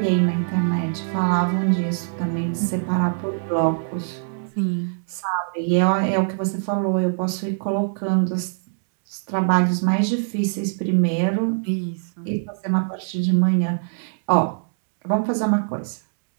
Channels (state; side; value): silent; left; digital silence